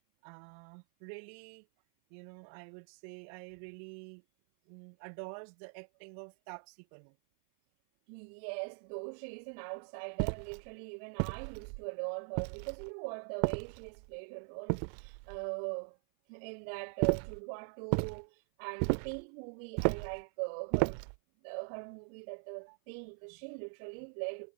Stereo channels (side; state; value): left; silent; 50 dB below the other